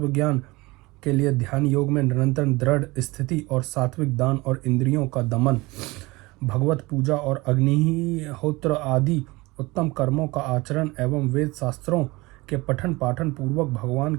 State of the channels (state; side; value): quieter; left; 22.4 dB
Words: के लिए ध्यान योग में निरंतर दृढ़ स्थिति और सात्विक दान और इंद्रियों का दमन, भगवत पूजा और अग्निहोत्र आदि उत्तम कर्मों का आचरण एवं वेद शास्त्रों के पठन पाठन पूर्वक भगवान